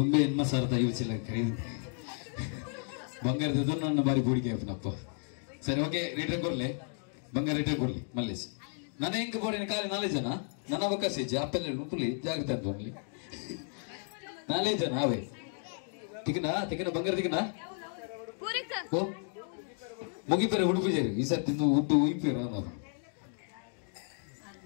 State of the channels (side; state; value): right; silent; 56 dB below the other